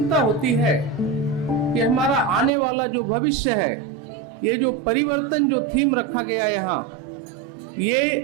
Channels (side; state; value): left; drops out; at 2.5 s